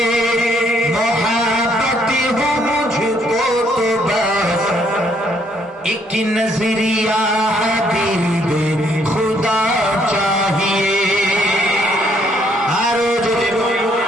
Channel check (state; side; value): normal; both; correlation 0.68